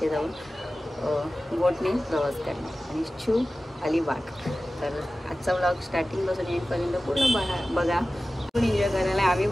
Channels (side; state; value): both; normal; correlation 0.96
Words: जाऊन बोटने प्रवास करणार आणि शू अलिबाग. तर आजचा व्लॉग स्टार्टिंगपासून एंडपर्यंत पूर्ण बघा. पण एन्जॉय करायला आम्ही